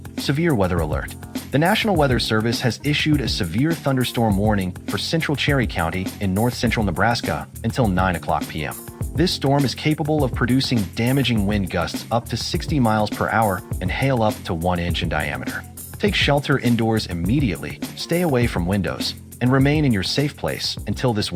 Severe weather alert. The National Weather Service has issued a severe thunderstorm warning for central Cherry County in north-central Nebraska until 9 o'clock p.m. This storm is capable of producing damaging wind gusts up to 60 miles per hour and hail up to 1 inch in diameter. Take shelter indoors immediately, stay away from windows, and remain in your safe place until this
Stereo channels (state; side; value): identical; both; correlation 1.00